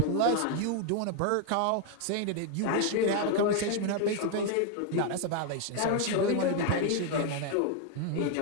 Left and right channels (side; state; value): both; different; correlation 0.01